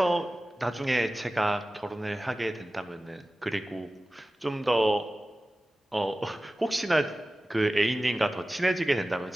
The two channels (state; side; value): normal; both; correlation 0.96